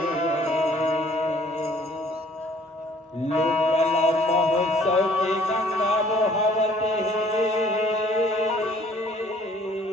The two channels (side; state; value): both; normal; correlation 0.57